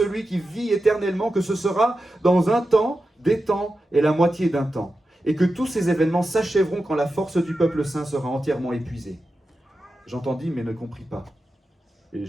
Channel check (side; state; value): both; normal; correlation 0.91